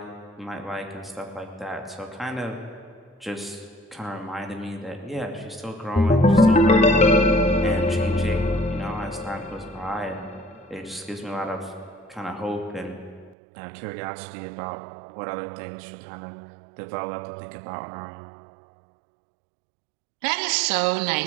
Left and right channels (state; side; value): drops out; left; at 13.4 s